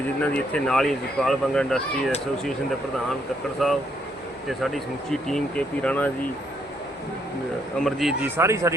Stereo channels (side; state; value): both; normal; correlation 0.73